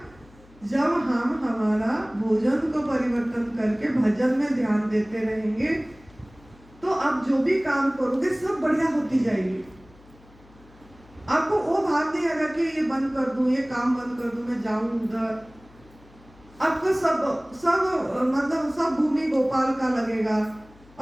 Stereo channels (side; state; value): left; noise; hum, 25 dB below the sound